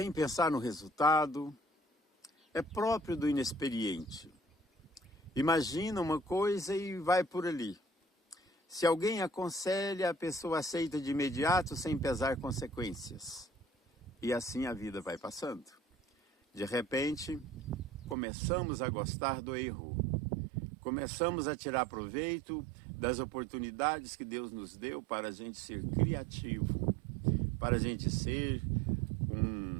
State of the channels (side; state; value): left; drops out; at 18.2 s